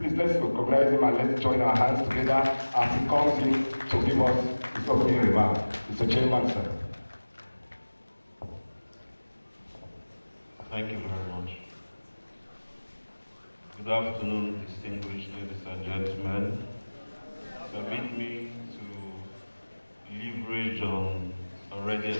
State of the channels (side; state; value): both; inverted; correlation -1.00